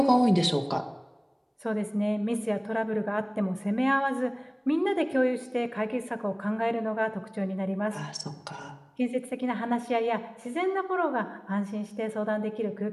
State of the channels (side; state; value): both; identical; correlation 1.00